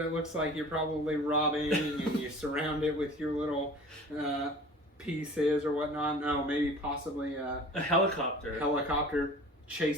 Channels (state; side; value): normal; both; correlation 0.43